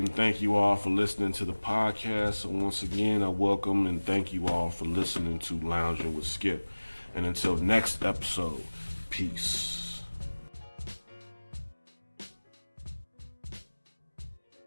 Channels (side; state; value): both; inverted; correlation -1.00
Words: and thank you all for listening to the podcast. So once again, I welcome and thank you all for listening to Loungin with Skip. And until next episode, peace.